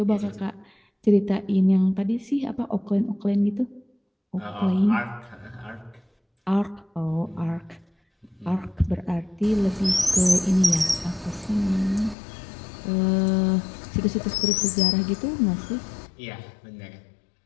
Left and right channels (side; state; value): right; drops out; at 12.2 s